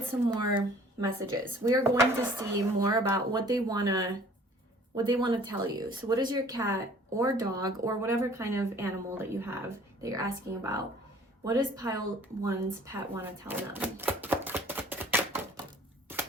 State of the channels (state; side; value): normal; both; correlation 0.52